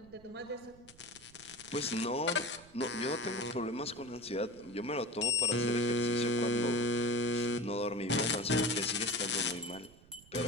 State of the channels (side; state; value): right; noise; rumble, 24 dB below the sound